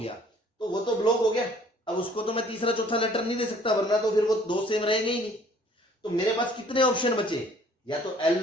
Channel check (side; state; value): both; normal; correlation 0.56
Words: तो वो तो ब्लॉक हो गया, अब उसको तो मैं तीसरा चौथा लेटर नहीं दे सकता, वरना तो फिर वो दो सेम रहेंगे ही नहीं। तो मेरे पास कितने ऑप्शन बचे? या तो एल